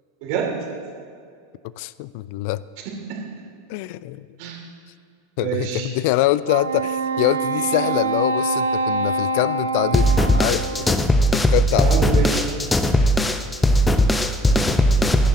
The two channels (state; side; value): normal; both; correlation 0.41